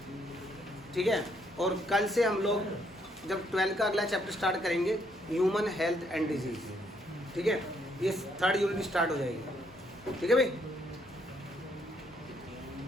ठीक है। और कल से हम लोग जब 12 का अगला चैप्टर स्टार्ट करेंगे, ह्यूमन हेल्थ एंड डिजीज़, ठीक है, ये 3rd यूनिट स्टार्ट हो जाएगी, ठीक है भाई।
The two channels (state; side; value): normal; both; correlation 0.71